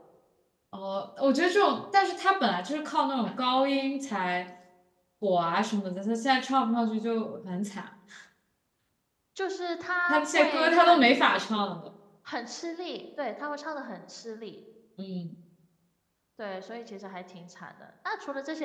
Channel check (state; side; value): identical; both; correlation 1.00